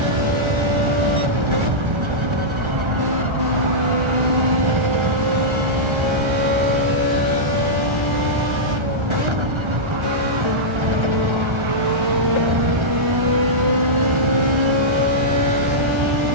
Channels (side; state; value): left; late; 1.3 ms